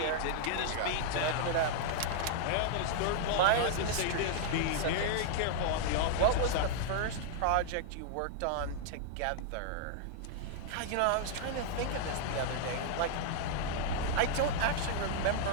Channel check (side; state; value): both; different; correlation -0.01